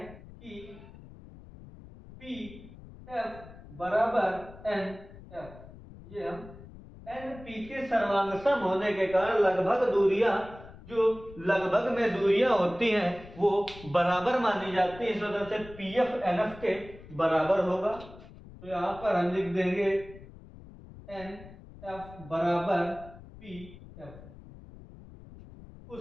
कि पी एफ बराबर एन एफ। ये हम एन पी के सर्वांग सम होने के कारण लगभग दूरियां, जो लगभग में दूरियां होती हैं वो बराबर मानी जाती है। इस वजह से पी एफ एन एफ के बराबर होगा। तो यहां पर हम लिख देंगे एन एफ बराबर पी एफ।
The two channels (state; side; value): noise; left; rumble, 18 dB below the sound